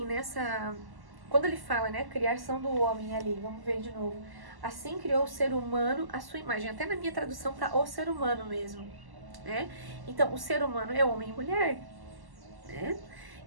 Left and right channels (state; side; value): late; left; 1.1 ms